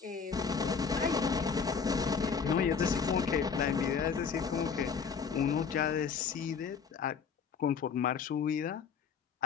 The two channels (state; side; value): quieter; right; 6.1 dB